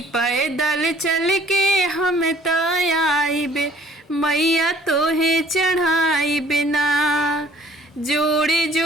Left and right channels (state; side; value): normal; both; correlation 0.56